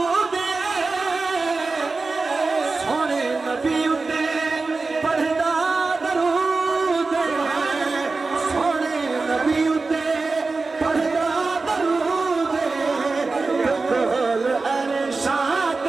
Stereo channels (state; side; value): quieter; left; 3.9 dB